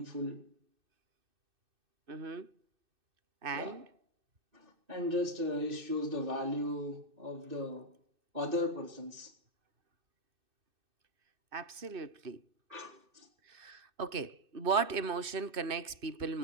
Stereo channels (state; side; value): late; left; 2.6 ms